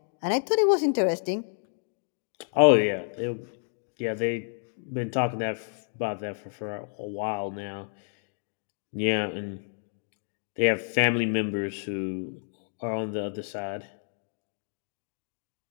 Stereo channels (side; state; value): right; silent; digital silence